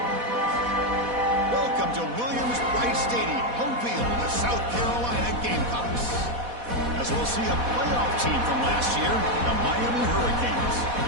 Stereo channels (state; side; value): late; left; 4.1 ms